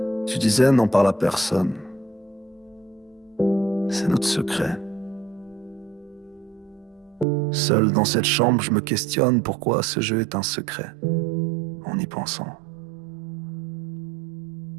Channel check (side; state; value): left; drops out; at 7.2 s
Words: Tu disais n'en parle à personne. C'est notre secret. Seul dans cette chambre, je me questionne pourquoi ce jeu est un secret. En y pensant.